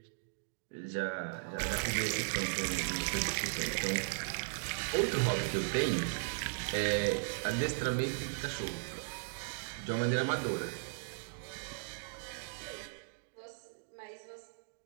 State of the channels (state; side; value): silent; left; digital silence